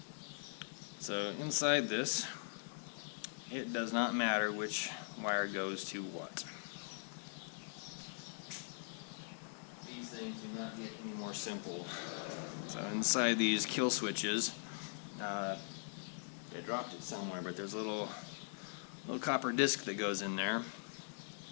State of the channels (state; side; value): silent; right; digital silence